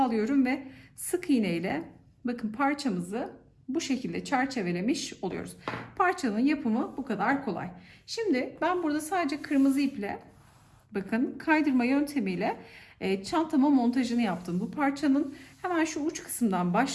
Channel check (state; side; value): identical; both; correlation 1.00